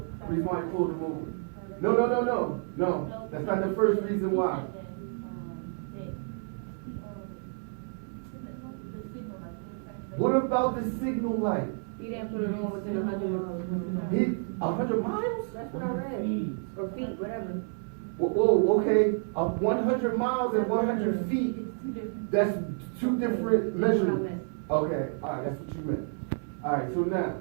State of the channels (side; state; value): left; silent; 58 dB below the other